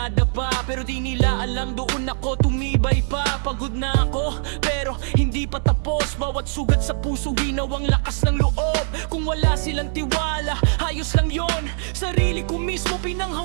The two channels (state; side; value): silent; left; digital silence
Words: pero di nila alam doon ako tumibay pa. Pagod na ako, pero hindi pa tapos. Bawat sugat sa puso, ginawang lakas ng loob. Kung wala silang tiwala, ayos lang yon. Sarili ko mismo,